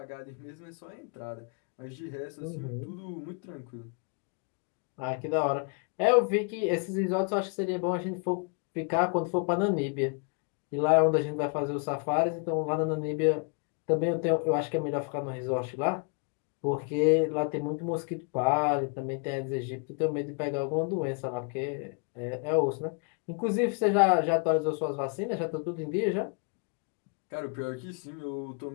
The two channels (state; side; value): quieter; right; 37.6 dB